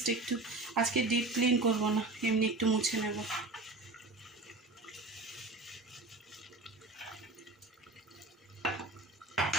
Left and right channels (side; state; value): left; quieter; 3.1 dB